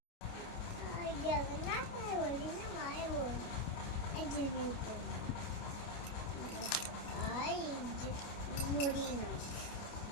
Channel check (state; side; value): late; right; 29 ms